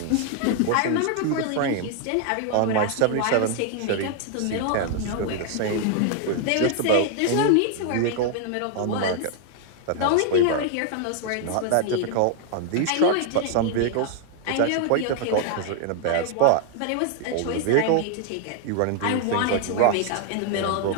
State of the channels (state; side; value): different; both; correlation 0.00